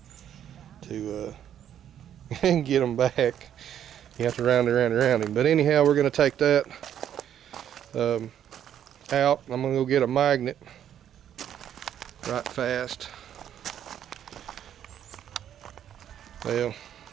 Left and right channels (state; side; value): quieter; left; 10.0 dB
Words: get them back. You have to round him. But anyhow, we're gonna take that out. I'm gonna go get a magnet right fast. Well,